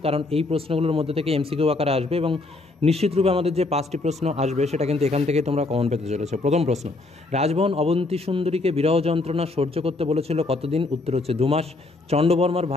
কারণ এই প্রশ্নগুলোর মধ্যে থেকে এমসিকিউ আকারে আসবে এবং নিশ্চিতরূপে আমাদের যে 5টি প্রশ্ন আসবে সেটা কিন্তু এখান থেকে তোমরা কমন পেতে চলেছো। প্রথম প্রশ্ন, রাজবহন অবন্তী সুন্দরীকে বিরহ যন্ত্রণা সহ্য করতে বলেছিল কতদিন? উত্তর হচ্ছে 2 মাস। চণ্ডবর্মার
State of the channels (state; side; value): quieter; right; 3.2 dB